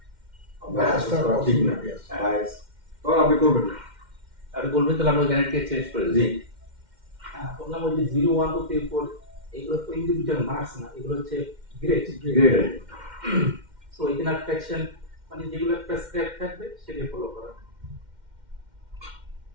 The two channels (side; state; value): left; late; 2.1 ms